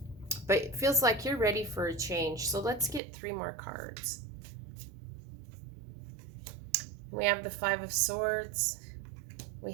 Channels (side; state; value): left; drops out; at 3.0 s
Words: but it feels like you're ready for a change. So let's get 3 more cards. We have the 5 of Swords,